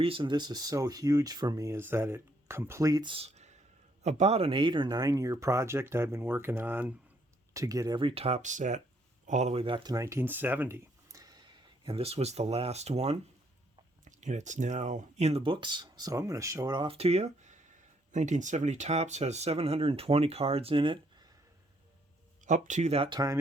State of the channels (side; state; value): both; normal; correlation 0.70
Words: this is so huge for me is that it completes about an 8 or 9 year project I've been working on to get every Topps set all the way back to 1970. And this was the last one. And it's now in the books, so I'm going to show it off to you. 1970 Topps has 720 cards in it. Up to that time,